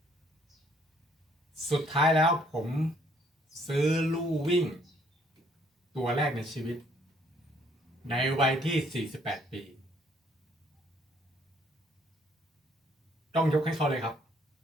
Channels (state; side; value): normal; both; correlation 0.64